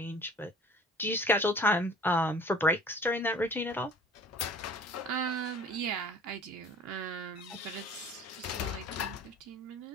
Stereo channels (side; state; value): both; normal; correlation 0.47